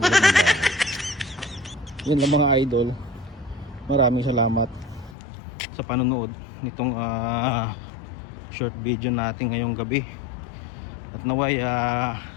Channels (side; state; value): right; drops out; at 5.2 s